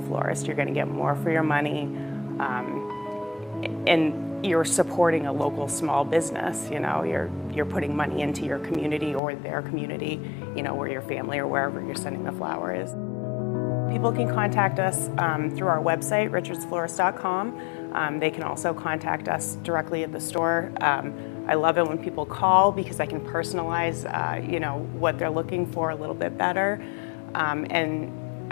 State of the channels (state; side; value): drops out; right; at 9.2 s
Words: florist. You're going to get more for your money. and you're supporting a local small business. You know, you're putting money into your community or their community, you know, where your family or wherever you're sending the flower is. People can contact us through our website, richardsflorist.com. They can also contact us directly at the store. I love it when people call because I can personalize, you know, what they're looking for a little bit better. And